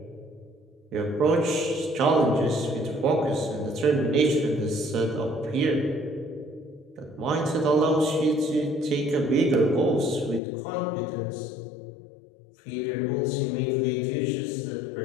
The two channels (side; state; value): right; drops out; at 10.4 s